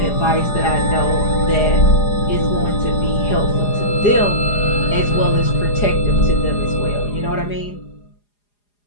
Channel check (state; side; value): late; right; 4.9 ms